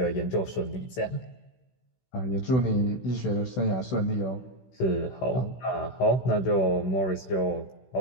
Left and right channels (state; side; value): late; right; 16 ms